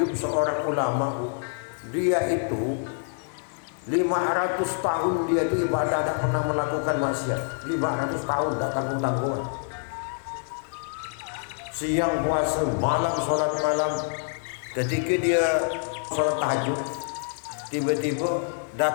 seorang ulama. Dia itu 500 tahun dia itu ibadah, tidak pernah melakukan maksiat. 500 tahun tak tanggung-tanggung. Siang puasa, malam sholat malam. Ketika dia sholat tahajud, tiba-tiba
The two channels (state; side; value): silent; right; digital silence